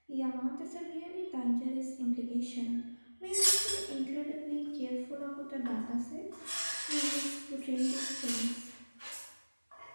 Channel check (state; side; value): inverted; both; correlation -1.00